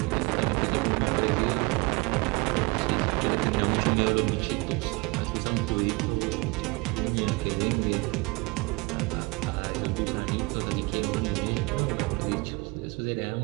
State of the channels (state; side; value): quieter; left; 26.2 dB